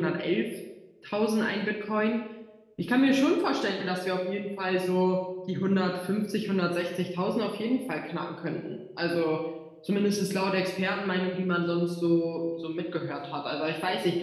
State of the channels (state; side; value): identical; both; correlation 1.00